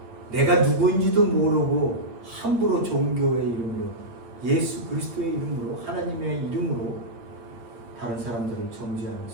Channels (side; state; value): left; late; 8.8 ms